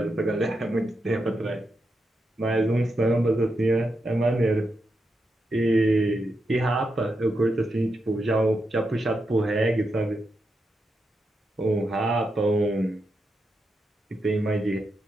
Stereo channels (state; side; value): normal; both; correlation 0.85